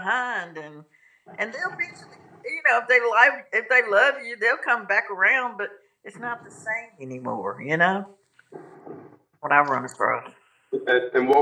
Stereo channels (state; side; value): identical; both; correlation 1.00